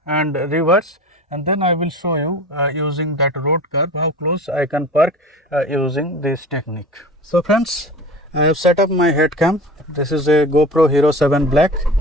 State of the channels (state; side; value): normal; both; correlation 0.37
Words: and reverse, and then I will show you using that road curve how close I can park using this technique. So friends, I have set up my head cam. This is a GoPro Hero 7 Black.